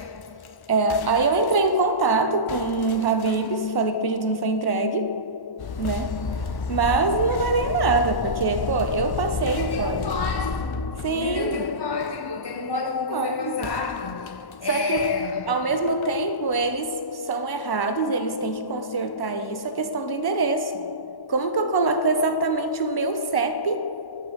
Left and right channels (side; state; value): right; late; 1.1 ms